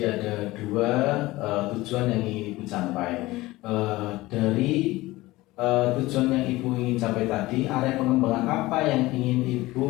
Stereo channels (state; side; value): quieter; right; 19.1 dB